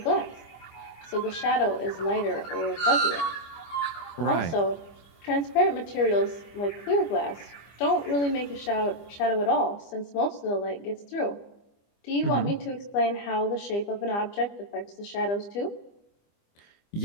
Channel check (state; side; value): late; right; 25 ms